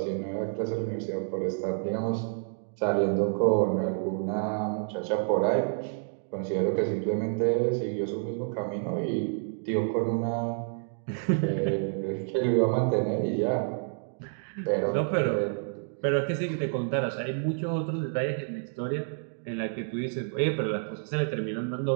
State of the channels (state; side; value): silent; left; digital silence